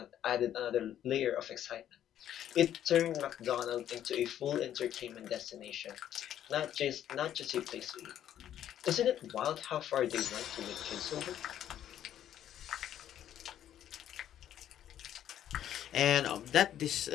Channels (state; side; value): quieter; right; 10.9 dB